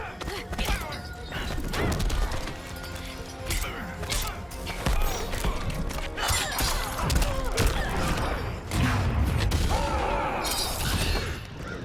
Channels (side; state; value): both; identical; correlation 1.00